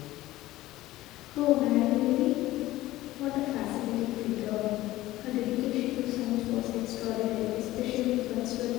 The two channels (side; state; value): right; quieter; 16.5 dB